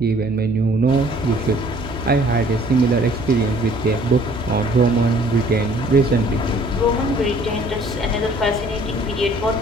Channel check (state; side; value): noise; right; hum, 14 dB below the sound